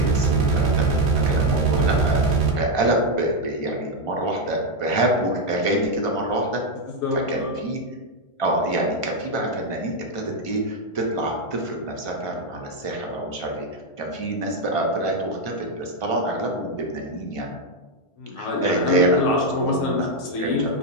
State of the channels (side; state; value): right; late; 1.5 ms